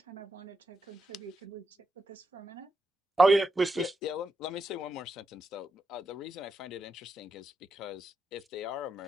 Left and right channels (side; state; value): both; normal; correlation 0.84